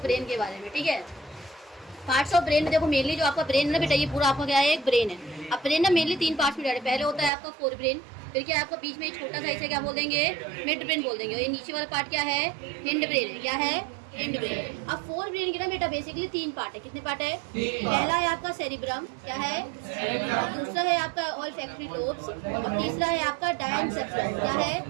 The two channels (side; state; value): left; drops out; at 7.3 s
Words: ब्रेन के बारे में। ठीक है, पार्ट्स ऑफ ब्रेन में देखो मेनली जो आपका ब्रेन है ना बेटा, ये पूरा आपका क्या है, एक ब्रेन है। अब ब्रेन ना मेनली 3 पार्ट्स में डिवाइड है। पहले होता है आपका फोर ब्रेन, फिर क्या आपका बीच में एक छोटा सा इसे क्या बोल देंगे, मिड ब्रेन बोल देंगे। और ये नीचे वाला पार्ट क्या है, हिंड ब्रेन है। क्या है, हिंड ब्रेन। अब फोर ब्रेन के ना बेटा बेसिकली 3 पार्ट है। कितने पार्ट है? पहला है आपका सेरिब्रम, क्या है, दूसरा है आपका ऑल्फैक्टरी लोब्स, और तीसरा है आपका डायनसेफ्लॉन। क्या है?